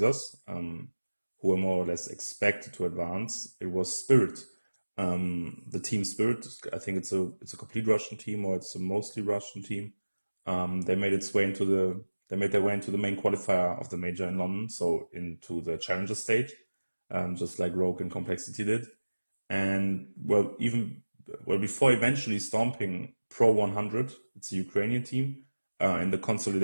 who were more or less expected to advance, it was Spirit. The team Spirit, I think it's a complete Russian team, or it's a mostly Russian team. They made their way into the main qualifier of the major in London, so into the challenger stage, just like Rogue and Complexity did. And well, before eventually stomping Pro 100, it's a Ukrainian team, in the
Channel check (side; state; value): both; inverted; correlation -1.00